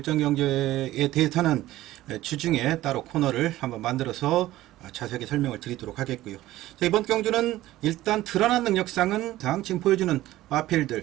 경기에 대해서는 주중에 따로 코너를 한번 만들어서 자세하게 설명을 드리도록 하겠고요. 자, 이번 경주는 일단 드러난 능력상은 지금 보여주는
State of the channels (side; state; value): left; quieter; 15.7 dB